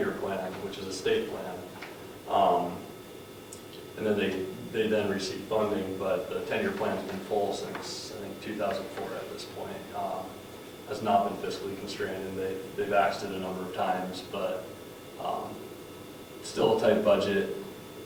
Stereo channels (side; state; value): both; identical; correlation 1.00